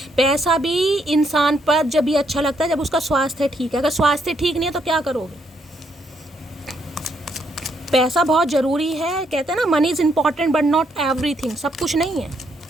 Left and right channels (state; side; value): normal; both; correlation 0.74